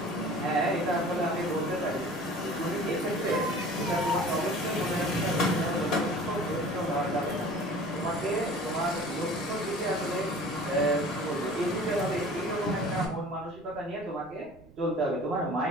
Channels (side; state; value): right; noise; rumble, 23 dB below the sound